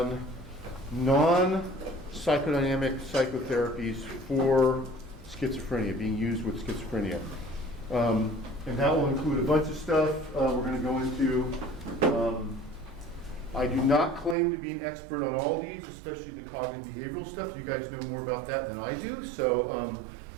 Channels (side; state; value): left; drops out; at 14.4 s